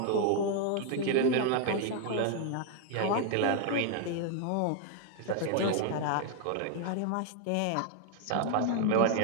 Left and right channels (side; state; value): both; different; correlation 0.00